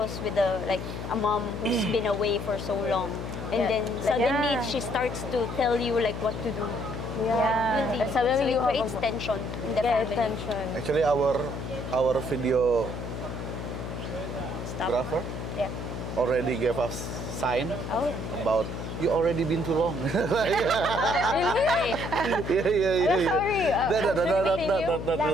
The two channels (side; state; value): left; noise; hum, 6 dB below the sound